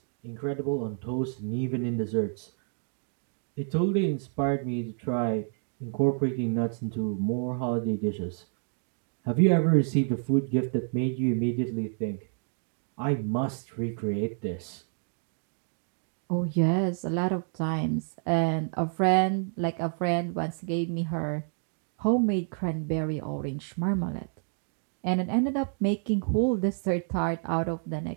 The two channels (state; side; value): silent; left; 57 dB below the other